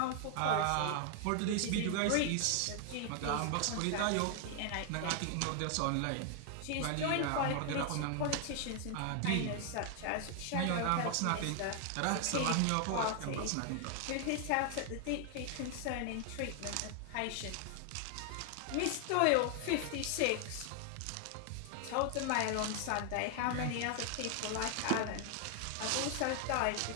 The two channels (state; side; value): different; both; correlation 0.00